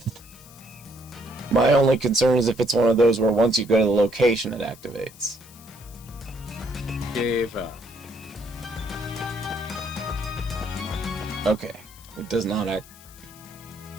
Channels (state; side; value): noise; left; hiss, 21 dB below the sound